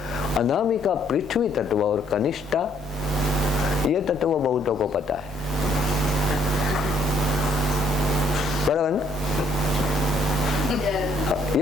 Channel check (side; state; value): both; normal; correlation 0.65